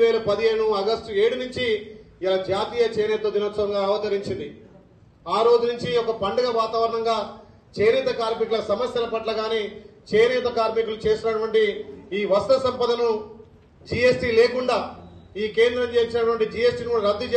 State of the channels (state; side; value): identical; both; correlation 1.00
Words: ఆగస్టు 7 నుంచి ఇలా జాతీయ చేనేత దినోత్సవంగా అవతరించింది. ఆ రోజు నుంచి ఒక పండుగ వాతావరణంగా చేనేత కార్మికుల సమస్యల పట్ల గాని, చేనేత కార్మికులు చేసినటువంటి ఈ వస్త్ర సంపదను జీఎస్టీ లేకుండా ఈ కేంద్రం చేసినటువంటి జీఎస్టీని కూడా రద్దు